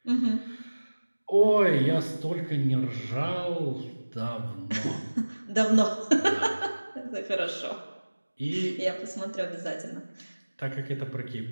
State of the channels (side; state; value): both; inverted; correlation -1.00